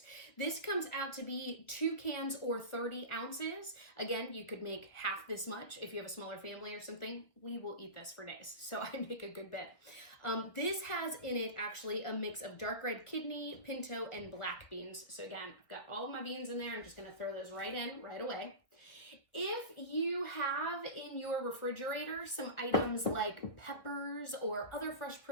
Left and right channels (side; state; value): right; late; 1.7 ms